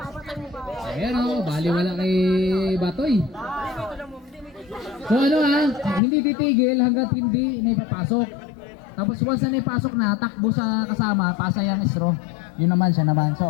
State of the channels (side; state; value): right; drops out; at 6.0 s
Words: Ayan, oh. Bali wala kay Batoy. So ano hindi titigil hanggat hindi naipapasok. Tapos once na naipasok na, takbo sa kasama, pasa yung straw. Yun naman, siya naman.